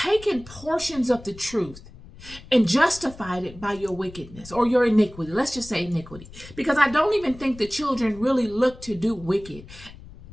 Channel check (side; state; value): left; noise; rumble, 18 dB below the sound